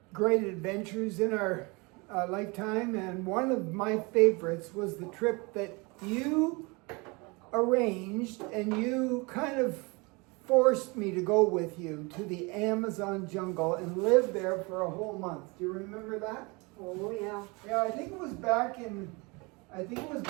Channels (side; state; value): left; quieter; 27.6 dB